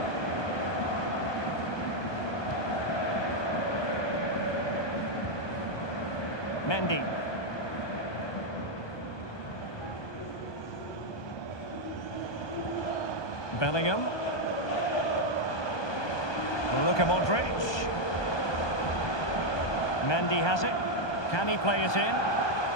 Mendy. Bellingham. Luka Modric. Mendy has it. Can he play it in?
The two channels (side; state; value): right; late; 1.2 ms